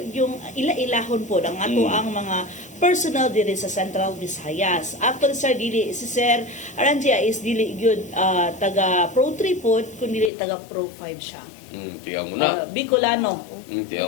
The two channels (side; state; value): right; drops out; at 10.3 s